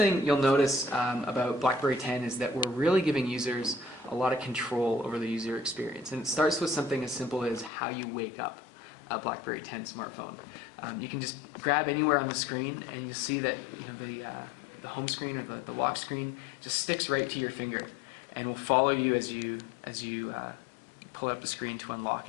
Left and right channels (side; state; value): right; drops out; at 7.7 s